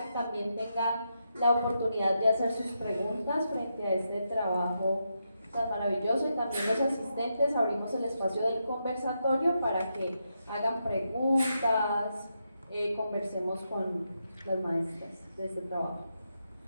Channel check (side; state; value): both; inverted; correlation -0.84